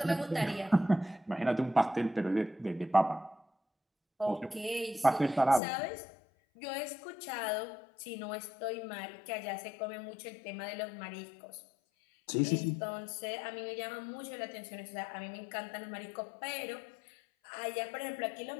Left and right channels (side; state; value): right; drops out; at 5.6 s